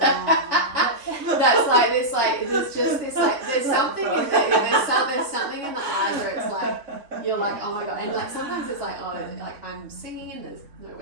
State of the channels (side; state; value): left; late; 3.6 ms